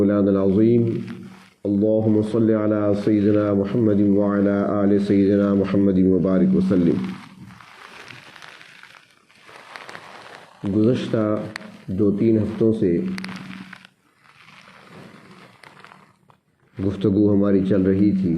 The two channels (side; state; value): both; identical; correlation 1.00